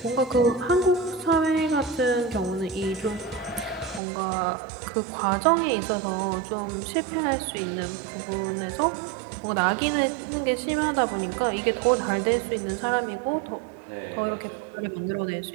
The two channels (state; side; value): drops out; left; at 4.0 s